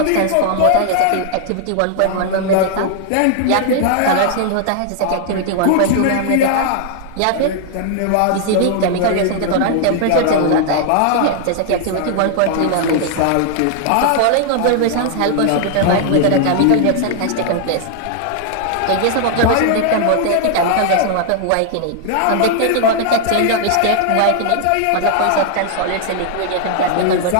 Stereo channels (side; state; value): both; different; correlation 0.00